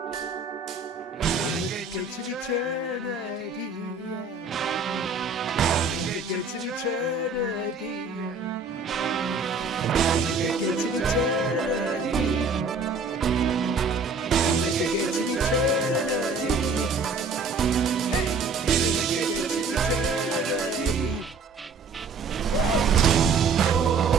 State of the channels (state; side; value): quieter; left; 4.2 dB